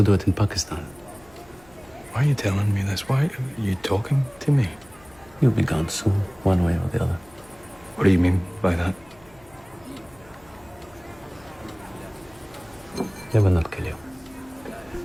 do it in Pakistan. Why are you telling me this? Why are you talking to me? You'll be gone soon, one way or the other. What do you mean by that? They will not kill you.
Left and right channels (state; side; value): noise; left; hum, 27 dB below the sound